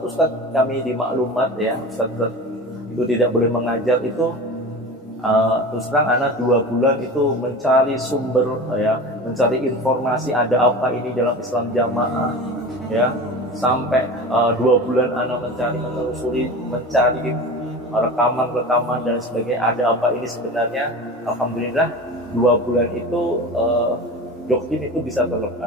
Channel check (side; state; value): both; normal; correlation 0.32